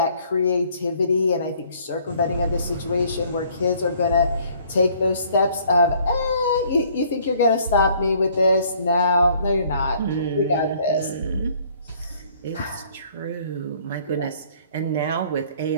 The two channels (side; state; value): both; inverted; correlation -0.59